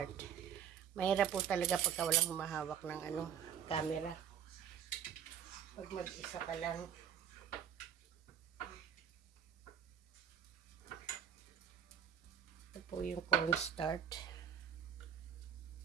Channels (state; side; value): quieter; left; 9.1 dB